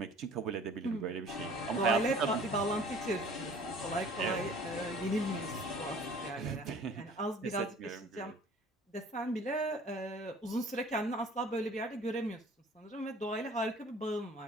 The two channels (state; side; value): normal; both; correlation 0.49